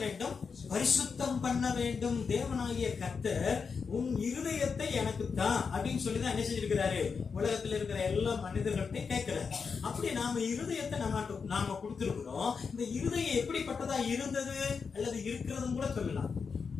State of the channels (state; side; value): quieter; right; 5.5 dB